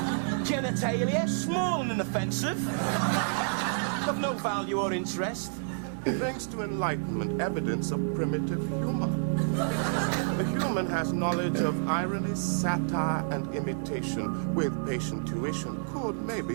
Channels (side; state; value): left; silent; digital silence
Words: Genitalia, small and inoffensive. Of no value or interest. Thanks to Enlightenment, evidence of primitive humor. The human has knowledge of irony, satire, and imitation. With patient tuition, could